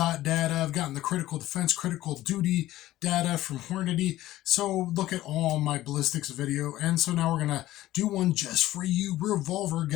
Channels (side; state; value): right; quieter; 15.2 dB